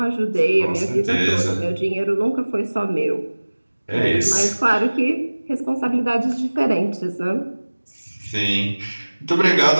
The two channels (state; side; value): inverted; both; correlation -1.00